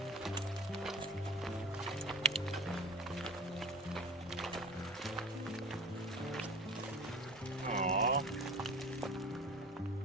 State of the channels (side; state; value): both; normal; correlation 0.38